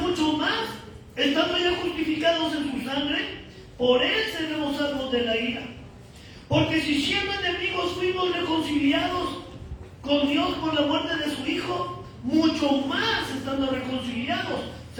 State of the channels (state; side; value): identical; both; correlation 1.00